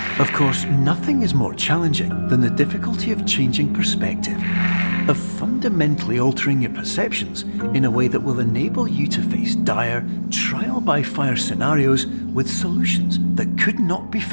Of course, nothing is more challenging than the difficulty of changing perspective, of fundamentally altering your perceptions in a way that will enable you to face dire, trial-by-fire scenarios with solutions that could not be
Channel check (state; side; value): inverted; both; correlation -1.00